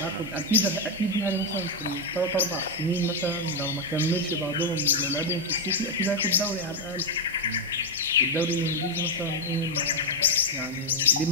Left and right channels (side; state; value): both; normal; correlation 0.02